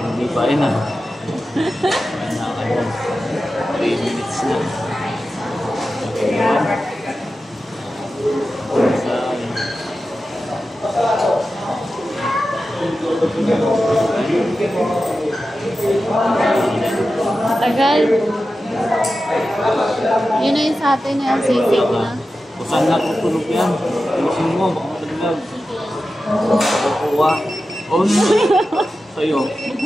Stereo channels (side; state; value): both; normal; correlation 0.93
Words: hindi pa rin ah. 3 minutes na. Tagal. Yun na yung sa atin na yung sisig na. Kung saan natutulog yan, ayusin mo, baka mataglag. Kukuha. Oh, sa'yo.